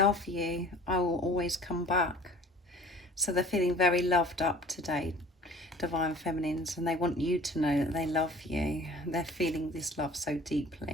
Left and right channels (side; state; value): both; normal; correlation 0.48